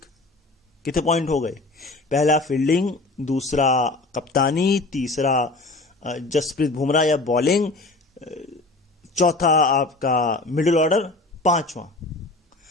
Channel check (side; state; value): right; quieter; 3.2 dB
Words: कितने पॉइंट हो गए? पहला फील्डिंग, दूसरा कप्तानी, तीसरा जसप्रीत बुमराह या बॉलिंग, चौथा आपका मिडिल ऑर्डर,